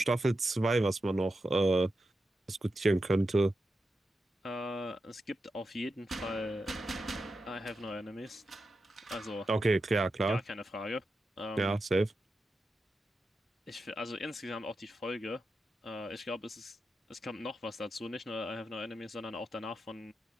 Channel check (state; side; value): normal; both; correlation 0.89